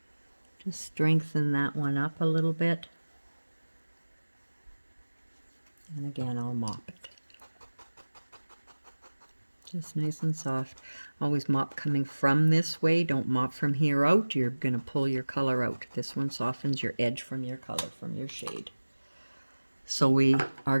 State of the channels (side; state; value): both; inverted; correlation -1.00